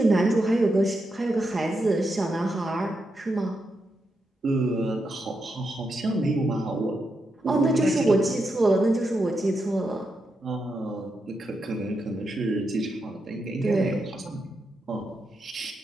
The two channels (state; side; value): normal; both; correlation 0.85